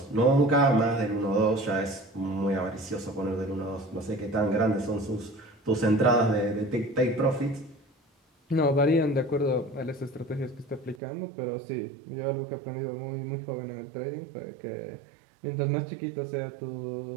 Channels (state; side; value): drops out; left; at 11.0 s